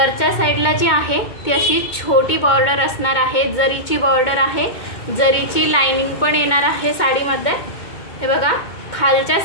साईडला जी आहे ती अशी छोटी बॉर्डर असणार आहे, जरीची बॉर्डर आहे, जरीची लाइनिंग पण येणार आहे साडीमध्ये। हे बघा, खालच्या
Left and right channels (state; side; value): late; right; 2.2 ms